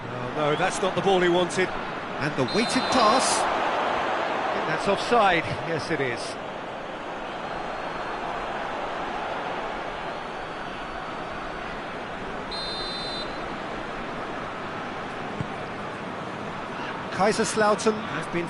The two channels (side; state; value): both; identical; correlation 1.00